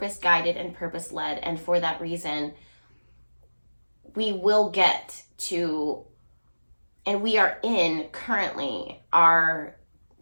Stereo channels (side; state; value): both; inverted; correlation -1.00